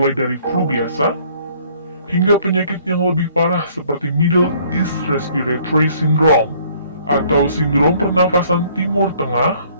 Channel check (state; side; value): inverted; both; correlation -0.60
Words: dari flu biasa hingga penyakit yang lebih parah seperti Middle East Respiratory Syndrome atau sindrom pernafasan Timur Tengah